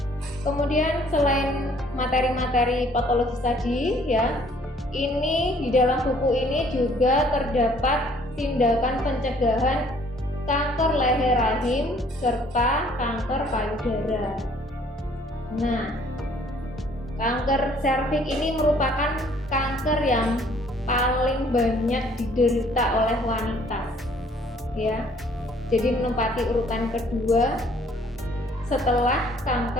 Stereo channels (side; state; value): both; normal; correlation 0.59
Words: Kemudian selain materi-materi patologis tadi ya, ini di dalam buku ini juga terdapat tindakan pencegahan kanker leher rahim serta kanker payudara. Nah, kanker serviks ini merupakan kanker yang paling banyak diderita oleh wanita ya. Jadi menempati urutan kedua setelah